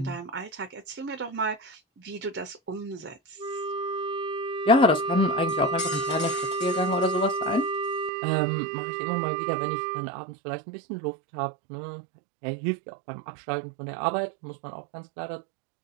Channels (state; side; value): drops out; left; at 8.1 s